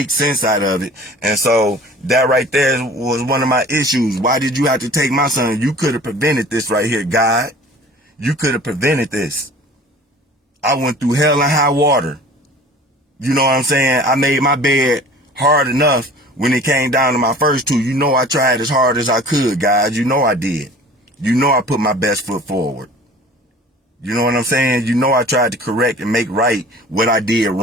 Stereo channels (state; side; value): normal; both; correlation 0.45